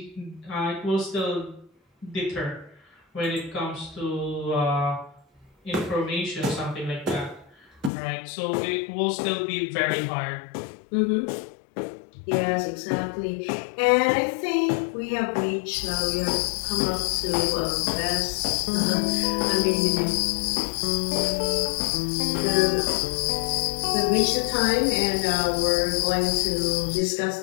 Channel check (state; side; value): drops out; right; at 7.9 s